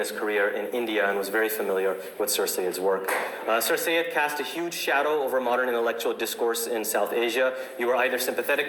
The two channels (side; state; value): both; identical; correlation 1.00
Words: career in India and was very familiar with Sir Sayyid's work. Sir Sayyid cast a huge shadow over modern intellectual discourse in South Asia. You were either